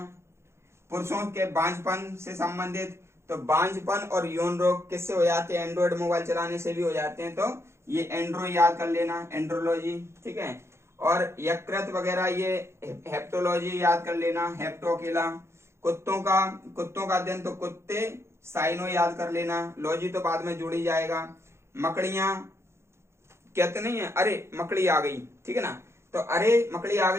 पुरुषों के बांझपन से संबंधित, तो बांझपन और यौन रोग किससे हो जाते हैं, एंड्रॉइड मोबाइल चलाने से भी हो जाते हैं, तो ये एंड्रो याद कर लेना, एंड्रोलॉजी, ठीक है। और यकृत वगैरह ये हेप्टोलॉजी याद कर लेना, हेप्टो अकेला। कुत्तों का अध्ययन, तो कुत्ते, साइनो याद कर लेना, लॉजी तो बाद में जोड़ी जाएगा। मकड़ियां कहते नहीं है, अरे मकड़ी आ गई, ठीक है ना, तो अरे मकड़ी आ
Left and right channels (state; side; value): late; left; 0.13 ms